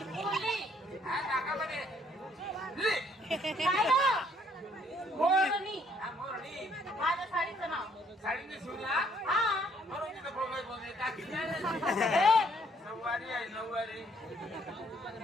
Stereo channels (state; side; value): normal; both; correlation 0.65